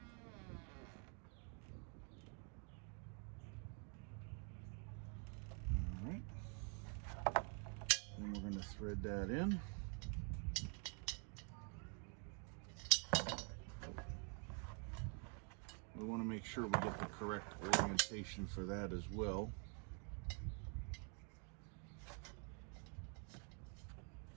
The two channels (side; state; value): left; quieter; 39.4 dB